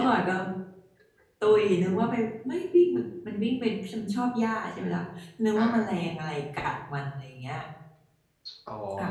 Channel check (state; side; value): identical; both; correlation 1.00